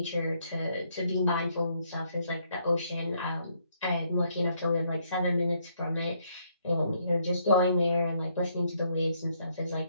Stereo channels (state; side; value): inverted; both; correlation -0.72